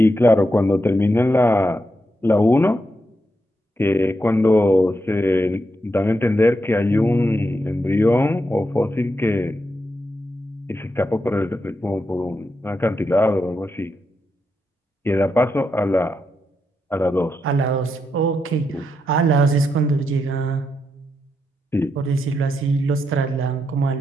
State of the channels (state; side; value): normal; both; correlation 0.84